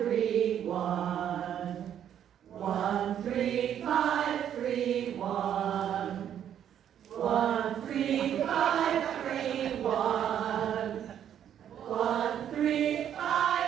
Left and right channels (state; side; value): quieter; left; 9.8 dB